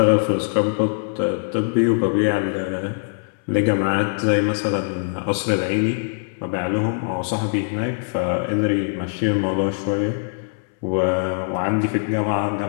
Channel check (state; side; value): silent; right; 64 dB below the other